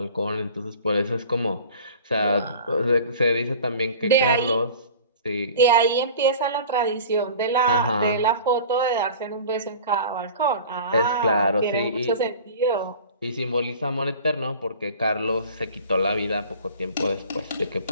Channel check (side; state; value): both; inverted; correlation -0.42